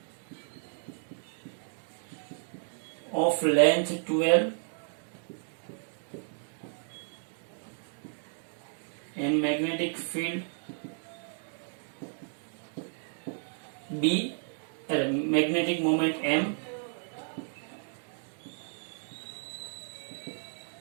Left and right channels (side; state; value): left; silent; 56 dB below the other